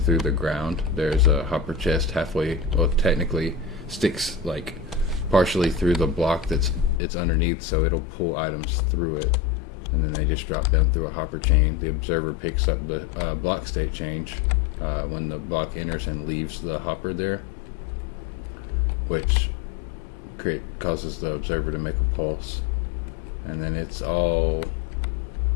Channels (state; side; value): drops out; right; at 7.0 s